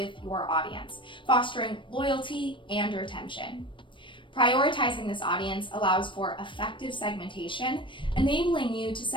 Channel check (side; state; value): right; late; 0.24 ms